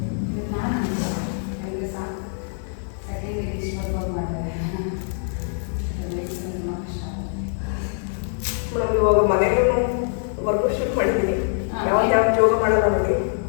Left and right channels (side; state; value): right; silent; 63 dB below the other